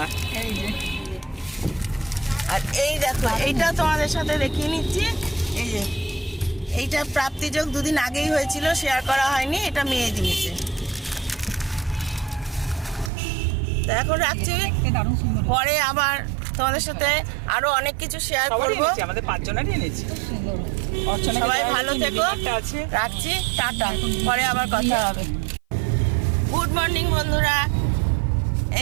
আর এই দেখো এইটা তোমাদের সাথে দেখিয়ে নিচ্ছি। এই যে এইটা প্রাপ্তিযোগ 2 দিন আগেই হয়েছিল, শেয়ার করা হয়নি, এটা মেয়ে দিয়েছে। তো এখন রাখছি, পরে আবার তোমাদের সাথে আরো অনেক কিছু শেয়ার করবো। আমাদের 5 জনেরই এনেছি। সবাই ভালো থেকো, রাখছি, টাটা, পরে আবার কথা হবে। গুড মর্নিং বন্ধুরা,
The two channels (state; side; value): drops out; left; at 13.1 s